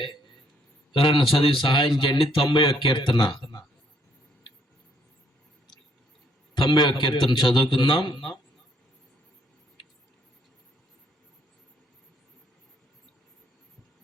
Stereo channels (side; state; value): both; normal; correlation 0.68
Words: ఎవరైనా చదివి సహాయం చేయండి. 91 కీర్తన, 91 కీర్తన చదువుకుందాం.